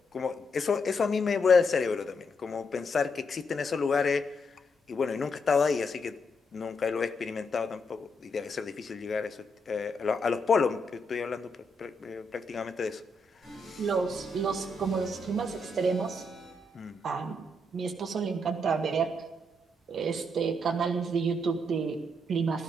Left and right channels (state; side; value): normal; both; correlation 0.79